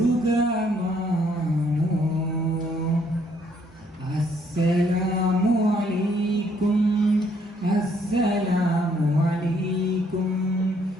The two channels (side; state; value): both; normal; correlation 0.68